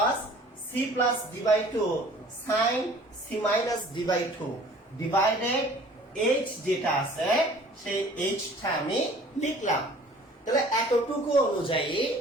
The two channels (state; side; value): normal; both; correlation 0.50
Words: c plus d by 2 sin c minus d by 2 divided h যেটা আছে সেই h টা আমি লিখলাম। তাহলে এতটুকু